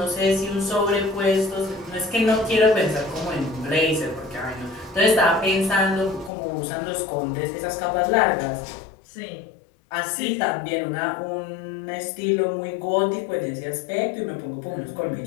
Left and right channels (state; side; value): drops out; right; at 6.3 s